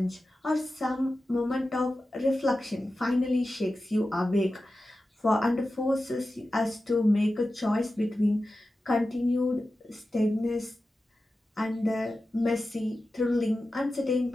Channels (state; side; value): normal; both; correlation 0.93